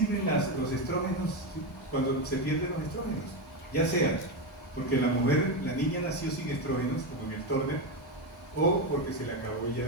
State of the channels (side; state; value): both; normal; correlation 0.11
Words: los estrógenos cuando se pierden los estrógenos? Ya sea porque la niña nació sin estrógenos, como en el Turner, o porque se le acabó